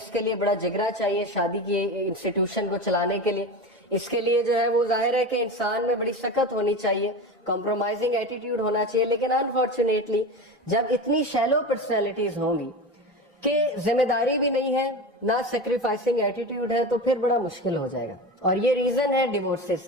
کے لیے بڑا جگرا چاہیے شادی کی انسٹیٹیوشن کو چلانے کے لیے. اس کے لیے جو ہے وہ ظاہر ہے کہ انسان میں بڑی سخت ہونی چاہیے, کمپرومائزنگ ایٹیٹیوڈ ہونا چاہیے. لیکن انفارچونیٹلی جب اتنی شیلو پرسنالٹیز ہوں گی کہ ذمہ داری بھی نہیں ہے, نہ سیکریفائسنگ ایٹیٹیوڈ ہے, تو پھر بڑا مشکل ہو جائے گا. اور یہ ریزن ہے ڈیورسز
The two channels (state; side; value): normal; both; correlation 0.26